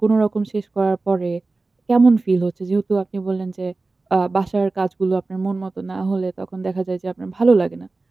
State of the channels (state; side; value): quieter; left; 3.5 dB